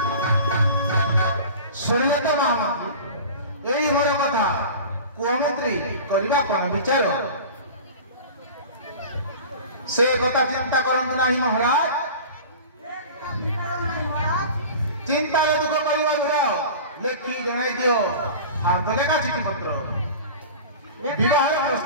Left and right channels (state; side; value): inverted; both; correlation -0.37